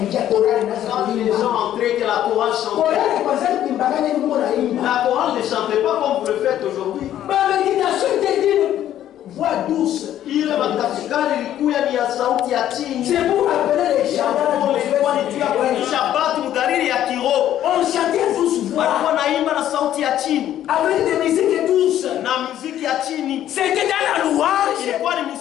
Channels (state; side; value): quieter; right; 11.7 dB